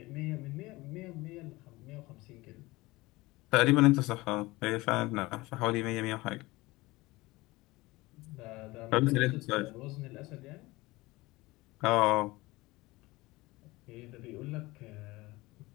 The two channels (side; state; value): right; quieter; 20.9 dB